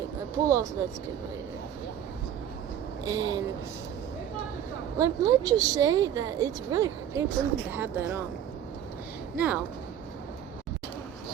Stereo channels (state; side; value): quieter; left; 9.8 dB